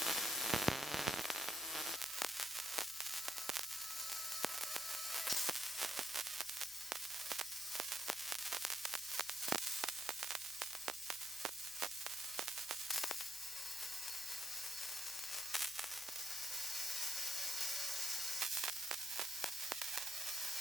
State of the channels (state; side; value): noise; left; hum, 26 dB below the sound